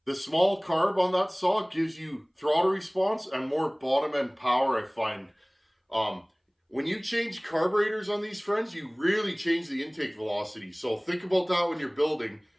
The small carb on that saw gives you throttle response and more bottom end power, I find. When you change carburetors on these, friends, you really change the intake velocity. So think about that when you're building.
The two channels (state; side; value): identical; both; correlation 1.00